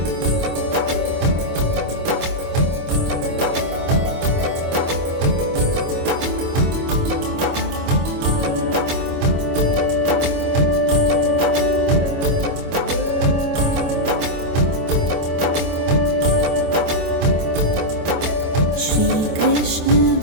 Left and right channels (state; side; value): late; left; 25 ms